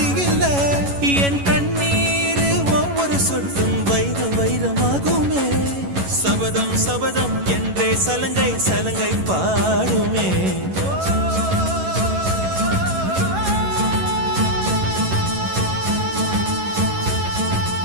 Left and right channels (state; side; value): late; left; 11 ms